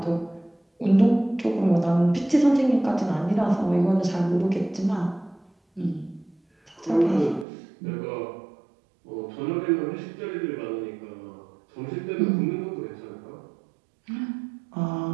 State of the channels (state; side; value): drops out; left; at 7.5 s